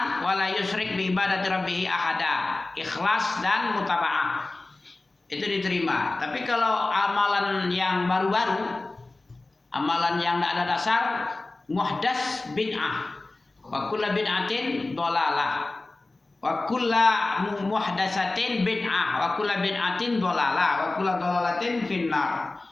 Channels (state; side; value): quieter; right; 3.1 dB